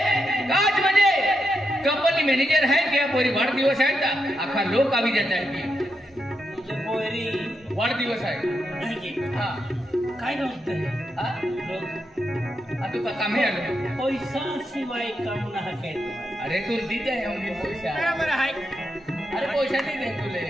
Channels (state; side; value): normal; both; correlation 0.83